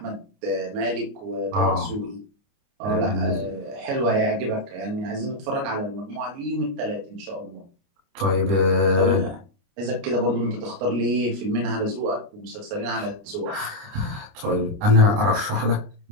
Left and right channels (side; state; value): left; late; 28 ms